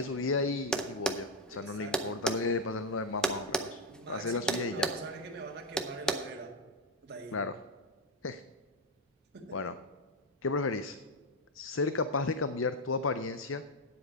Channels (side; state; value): both; normal; correlation 0.06